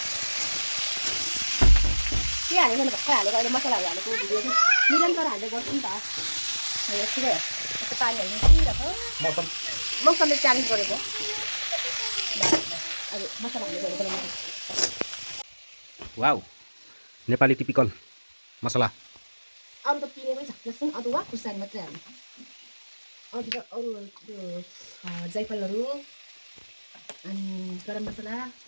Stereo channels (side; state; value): both; inverted; correlation -1.00